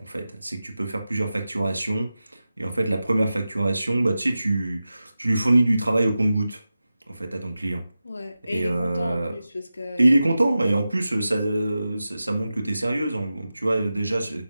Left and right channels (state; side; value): inverted; both; correlation -0.93